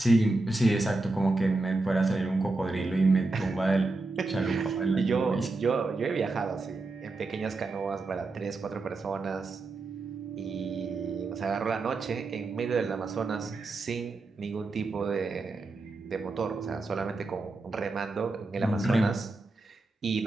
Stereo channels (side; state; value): left; quieter; 3.3 dB